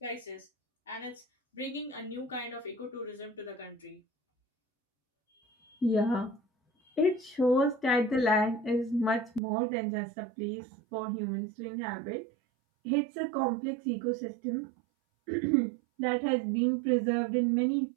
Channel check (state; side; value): drops out; left; at 9.4 s